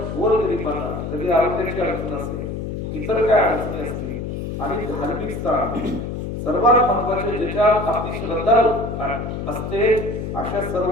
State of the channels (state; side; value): noise; left; hum, 5 dB below the sound